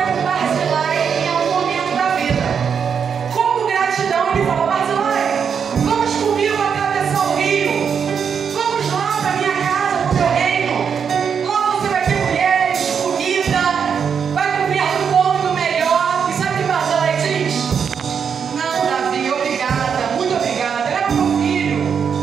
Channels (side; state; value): left; quieter; 6.9 dB